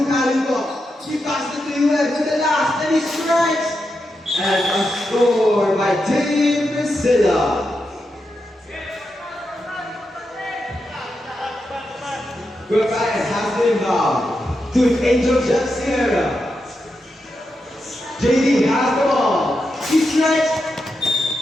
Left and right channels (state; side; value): normal; both; correlation 0.86